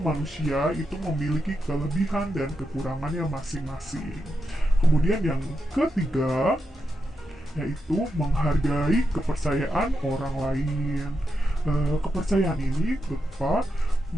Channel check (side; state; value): both; normal; correlation 0.86